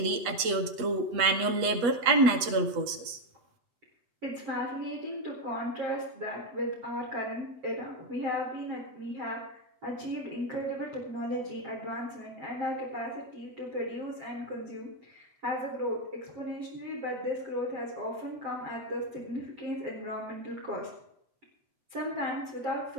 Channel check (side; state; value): left; late; 8.3 ms